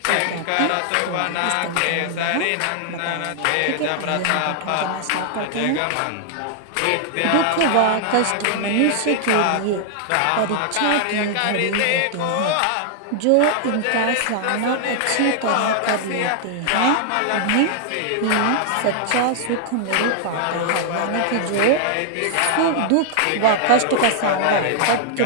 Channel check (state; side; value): different; both; correlation 0.00